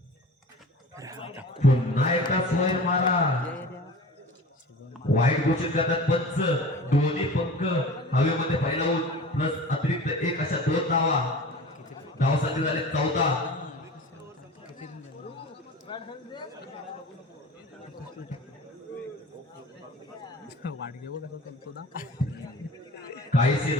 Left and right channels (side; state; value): both; normal; correlation 0.38